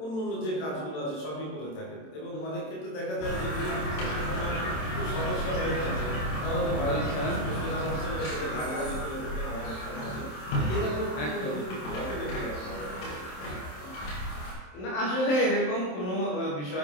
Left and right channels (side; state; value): right; late; 27 ms